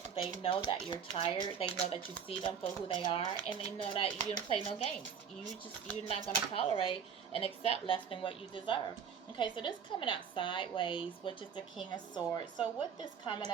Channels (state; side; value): quieter; left; 7.1 dB